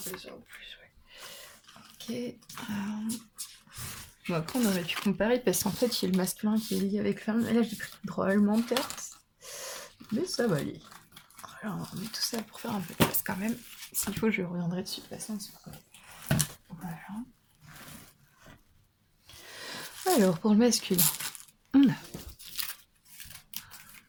en plus, ouais. Ok. Bon, après, on aurait pu comparer parce qu'en fait, il y a le masculin qui est lié avec le féminin. Et là, j'ai pris drôlement de cartes. Mais ça va aller. Alors, on met tout ça pour faire un peu de place quand même. S'il faut, je reviendrai dessus de toute façon. Voilà. Alors, pour le masculin, on a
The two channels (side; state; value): both; identical; correlation 1.00